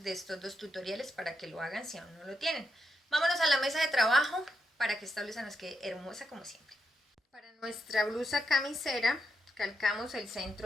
de estos dos tutoriales para que lo hagan si aún no lo tienen. Vámonos a la mesa de trabajo para que esta blusa nos quede hermosa como siempre. Para nuestra blusa camisera, calcamos el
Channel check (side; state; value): both; normal; correlation 0.83